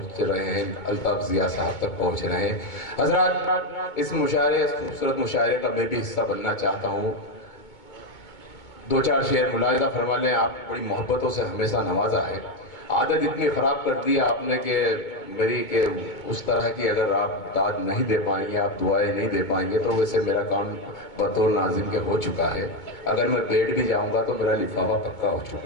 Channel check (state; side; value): late; right; 2.2 ms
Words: رہے ہیں. الطاف ضیاء صاحب تک پہنچ رہے ہیں. حضرات اس مشاعرے اس خوبصورت مشاعرے کا میں بھی حصہ بننا چاہتا ہوں. دو چار شعر ملاحظہ فرما لیں. آپ بڑی محبتوں سے ہمیشہ نوازا ہے. عادت اتنی خراب کر دی آپ نے کہ میری کہ اس طرح کی اگر آپ داد نہیں دے پائیں گے, آپ دعائیں نہیں دے پائیں گے تو ویسے میرا کام بطور ناظم کے ہو چکا ہے. اگر میں بیٹھ بھی جاؤں گا تو میرا لفافہ پکا ہو